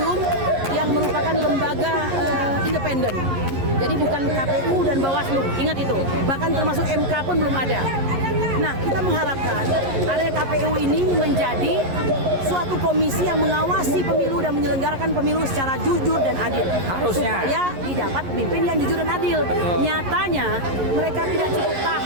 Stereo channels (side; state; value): left; late; 11 ms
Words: yang merupakan lembaga independen. Jadi bukan KPU dan Bawaslu, ingat itu. Bahkan termasuk MK pun belum ada. Nah, kita mengharapkan area KPU ini menjadi suatu komisi yang mengawasi pemilu dan menyelenggarakan pemilu secara jujur dan adil. Harusnya. Supaya didapat pemimpin yang jujur dan adil. Nyatanya mereka tidak cukup